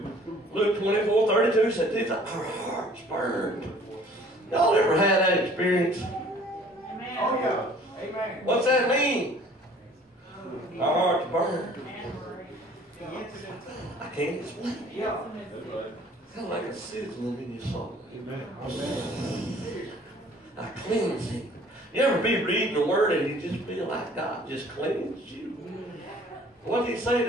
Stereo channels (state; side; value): normal; both; correlation 0.53